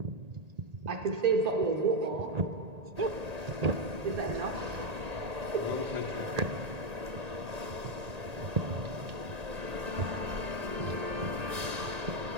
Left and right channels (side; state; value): left; late; 1.8 ms